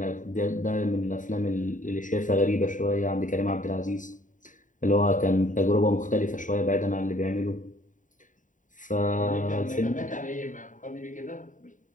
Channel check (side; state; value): right; late; 0.37 ms